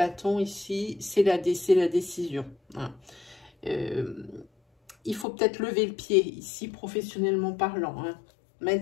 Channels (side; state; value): right; drops out; at 5.2 s